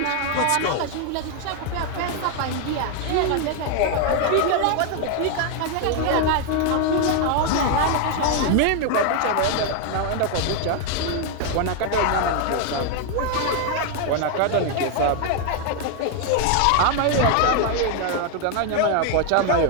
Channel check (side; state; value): both; different; correlation 0.01